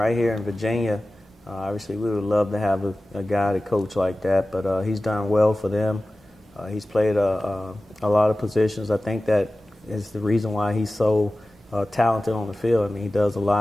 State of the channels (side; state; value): both; normal; correlation 0.96